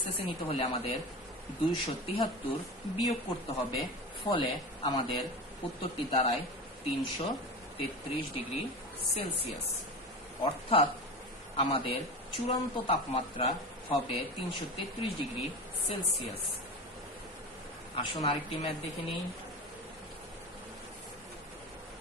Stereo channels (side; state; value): both; normal; correlation 0.28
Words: নিতে হলে আমাদের 273 বিয়োগ করতে হবে। ফলে আমাদের উত্তরটি দাঁড়ায় 333 ডিগ্রি সেলসিয়াস, অর্থাৎ আমাদের চূড়ান্ত তাপমাত্রা হবে 333 ডিগ্রি সেলসিয়াস। আসুন আরেকটি ম্যাথ দেখে নিই।